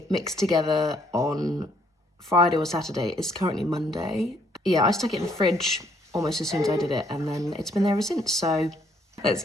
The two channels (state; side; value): normal; both; correlation 0.68